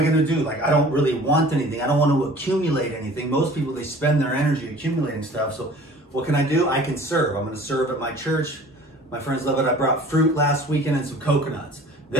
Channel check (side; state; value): both; normal; correlation 0.47